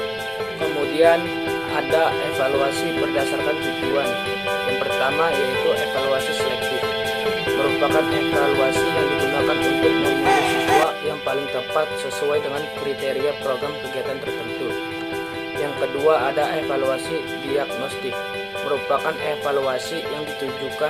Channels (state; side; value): identical; both; correlation 1.00